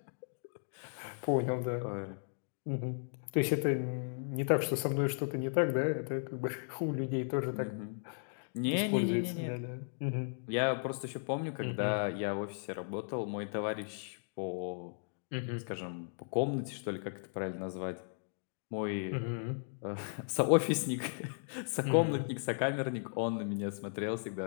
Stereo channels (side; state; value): right; silent; digital silence